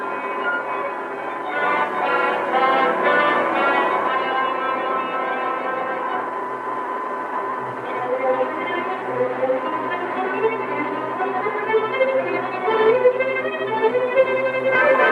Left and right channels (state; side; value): identical; both; correlation 1.00